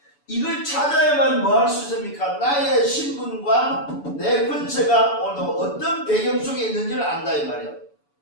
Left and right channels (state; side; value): late; right; 7.0 ms